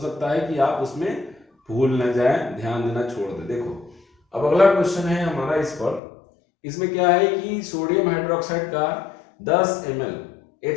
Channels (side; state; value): right; drops out; at 6.0 s